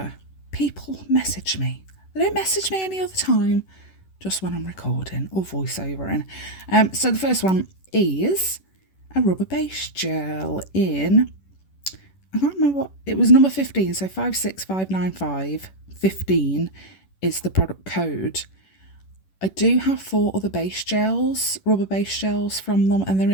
people message me. They don't message me any other time, just when I'm recording or voiceovering. So the first one is a rubber base gel in, I can't remember what, it was number 15, so 56595, 15 is the product code. I do have 4 other base gels, rubber base gels from them, and they're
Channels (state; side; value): late; right; 11 ms